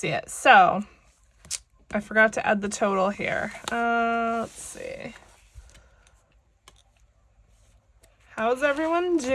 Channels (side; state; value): both; identical; correlation 1.00